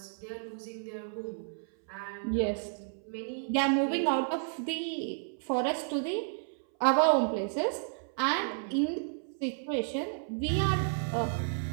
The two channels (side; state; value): left; silent; 57 dB below the other